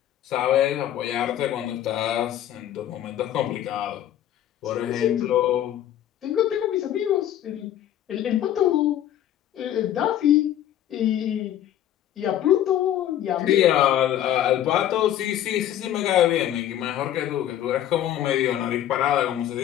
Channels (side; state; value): right; quieter; 11.5 dB